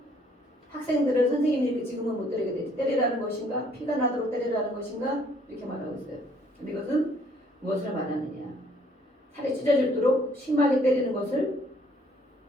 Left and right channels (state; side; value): normal; both; correlation 0.63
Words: 학생들을 선생님이 이렇게 지금은 못 때리게 되지. 때리라는 것인가? 피가 나도록 때리라는 것인가? 이렇게 말하고 있어요. 근데 이것은 무엇을 말하느냐? 살이 찢어질도록 심하게 때리는 것을